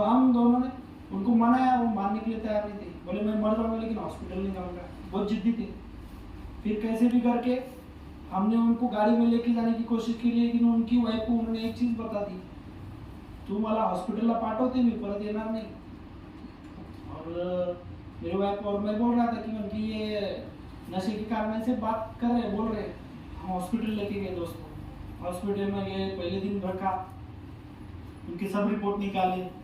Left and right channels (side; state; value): both; identical; correlation 1.00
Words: हम दोनों ने उनको मनाया, वो मानने के लिए तैयार नहीं थे। बोले मैं मर जाऊंगा लेकिन हॉस्पिटल नहीं जाऊंगा, बहुत जिद्दी थे। फिर कैसे भी करके हमने उनको गाड़ी में लेके जाने की कोशिश की, लेकिन उनकी वाइफ को उन्होंने एक चीज बता दी, तू मला हॉस्पिटलला पाठवते, मी परत येणार नहीं। और मेरे वाइफ और मैं बोल रहा था कि ये नशे के कारण से बात कर रहे, बोल रहे। हम हॉस्पिटल लेके गए दोस्तों, हॉस्पिटल में गए, पहले दिन रखा, उनके सब रिपोर्ट निकाले,